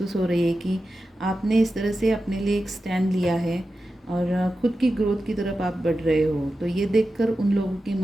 हो रही है कि आपने इस तरह से अपने लिए एक स्टैंड लिया है और खुद की ग्रोथ की तरफ आप बढ़ रहे हो। तो ये देखकर उन लोगों के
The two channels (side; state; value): both; normal; correlation 0.92